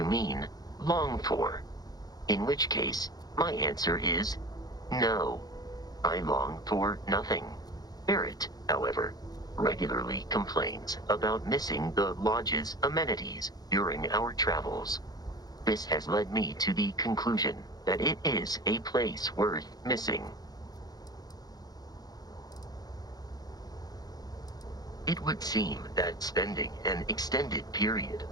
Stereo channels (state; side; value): late; right; 0.19 ms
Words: mean long for, in which case my answer is no. I long for nothing. Barrett, however, regularly complains about missing the Lodge's amenities during our travels. This has led me to the conclusion that it is a place worth missing. It would seem that spending an extended period